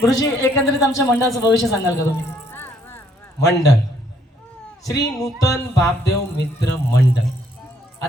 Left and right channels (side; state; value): both; normal; correlation 0.68